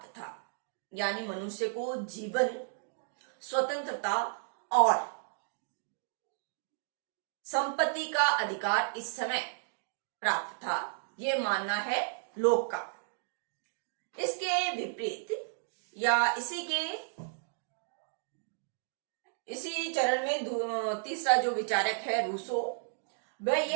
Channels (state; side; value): silent; left; digital silence